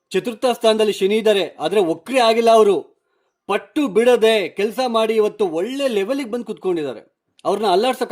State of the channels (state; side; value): identical; both; correlation 1.00